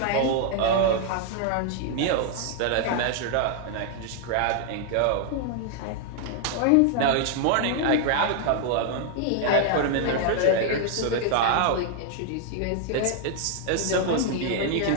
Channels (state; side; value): different; both; correlation 0.00